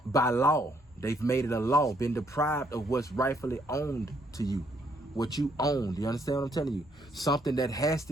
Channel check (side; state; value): both; normal; correlation 0.70